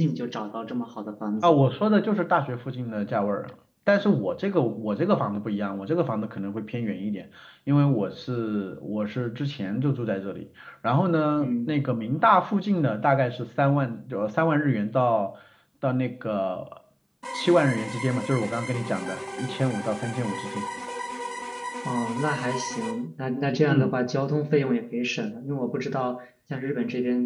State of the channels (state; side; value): identical; both; correlation 1.00